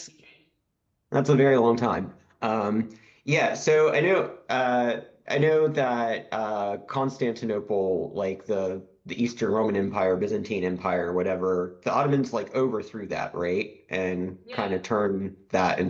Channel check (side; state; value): both; identical; correlation 1.00